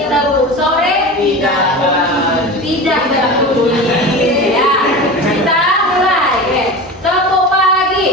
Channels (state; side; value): normal; both; correlation 0.30